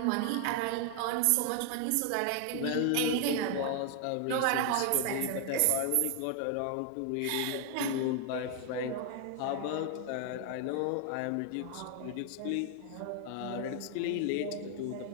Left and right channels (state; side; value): different; both; correlation 0.00